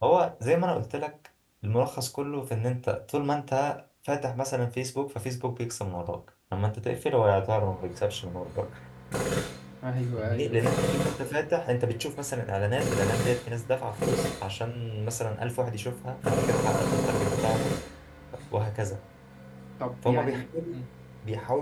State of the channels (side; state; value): both; identical; correlation 1.00